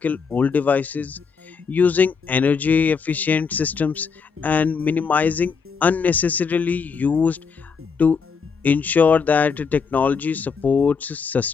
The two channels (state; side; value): quieter; right; 5.6 dB